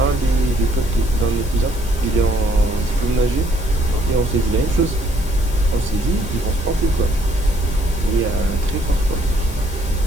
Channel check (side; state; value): left; noise; hiss, 16 dB below the sound